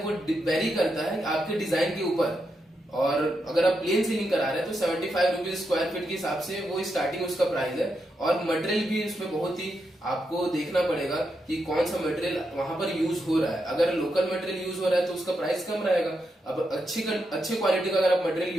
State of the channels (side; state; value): both; normal; correlation 0.84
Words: वो वेरी करता है आपके डिजाइन के ऊपर। और अगर आप प्लेन सीलिंग करा रहे हैं तो 75 रुपीज स्क्वायर फीट के हिसाब से वो स्टार्टिंग उसका प्राइस है। और मटेरियल भी उसमें बहुत ही आपको देखना पड़ेगा कि कौन सा मटेरियल वहां पर यूज हो रहा है। अगर लोकल मटेरियल यूज हो रहा है तो उसका प्राइस कम रहेगा। अब अच्छे क्वालिटी का अगर आप मटेरियल